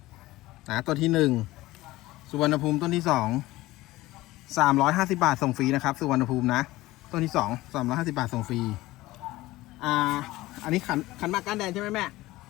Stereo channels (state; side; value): quieter; right; 18.0 dB